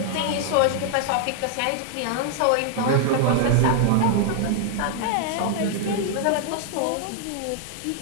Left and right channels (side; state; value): both; different; correlation 0.00